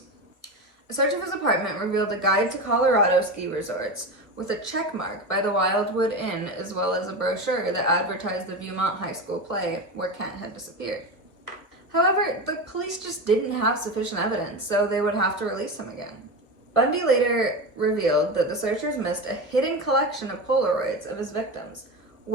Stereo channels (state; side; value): late; right; 1.4 ms